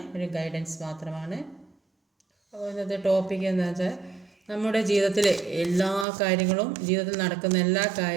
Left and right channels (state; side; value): drops out; left; at 6.1 s